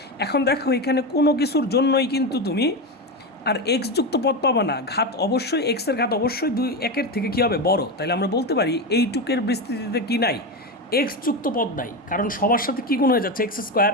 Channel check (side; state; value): both; normal; correlation 0.16